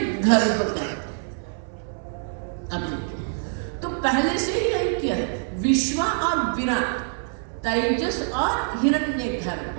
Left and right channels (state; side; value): silent; left; digital silence